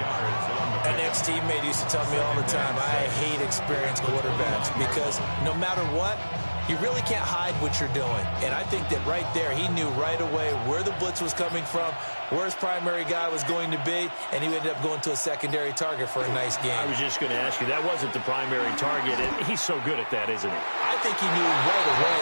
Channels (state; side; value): inverted; both; correlation -1.00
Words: An ex-teammate used to tell me all the time, I hate experienced quarterbacks because no matter what, you really can't hide what you're doing. And I think that right there, he knew right away where the blitz was coming from, where his primary guy was going to be, and he ended up going to a secondary target for a nice game. I was just going to ask you, that wasn't the primary target, and he's so good at that, isn't he? I think he knew right away